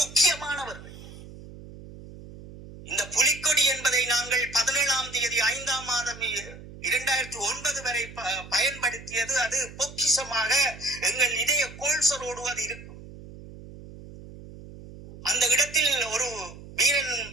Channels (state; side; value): noise; right; hum, 16 dB below the sound